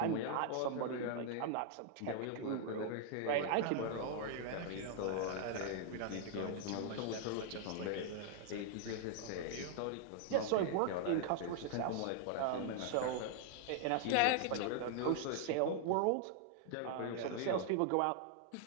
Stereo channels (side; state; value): both; different; correlation -0.01